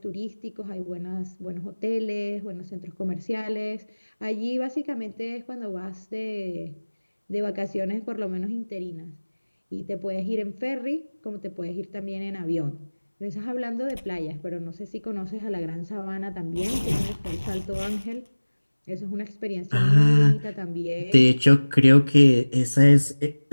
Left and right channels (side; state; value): both; inverted; correlation -1.00